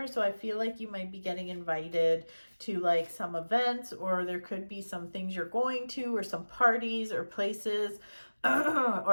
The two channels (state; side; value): inverted; both; correlation -1.00